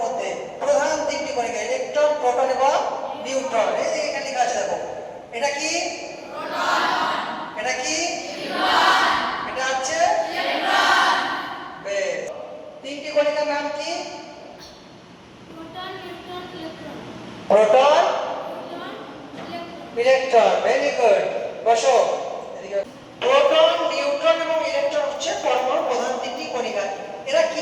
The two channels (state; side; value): identical; both; correlation 1.00